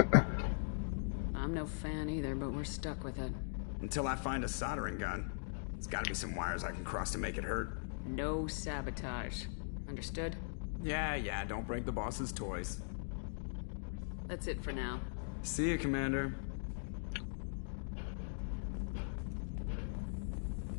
I'm no fan either, but we're stuck with it. Until I find a soldering gun. There's gotta be some wires I can cross to make it hurt. No sabotage. Understood? Yeah, don't break the boss's toys. That's it for now. See you, Commander.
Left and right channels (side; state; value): right; silent; digital silence